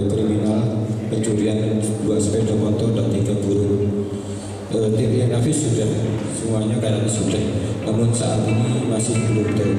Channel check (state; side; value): identical; both; correlation 1.00